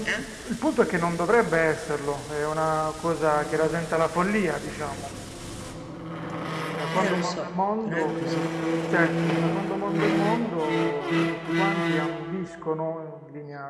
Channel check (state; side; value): identical; both; correlation 1.00